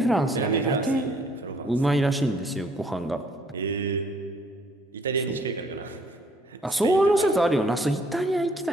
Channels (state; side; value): normal; both; correlation 0.63